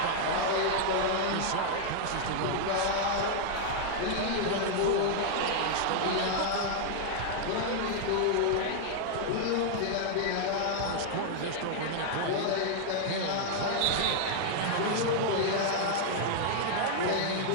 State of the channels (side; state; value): both; different; correlation 0.00